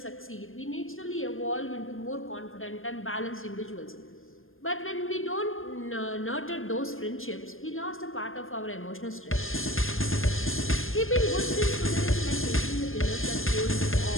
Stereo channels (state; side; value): late; right; 0.60 ms